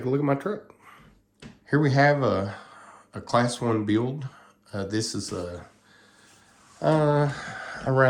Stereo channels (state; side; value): identical; both; correlation 1.00